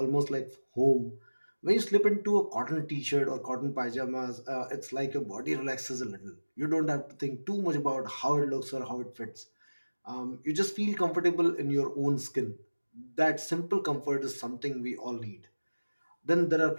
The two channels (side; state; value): both; inverted; correlation -1.00